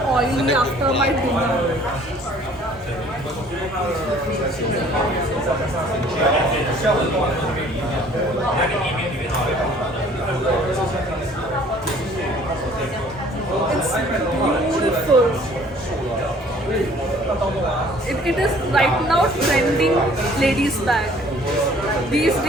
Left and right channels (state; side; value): normal; both; correlation 0.55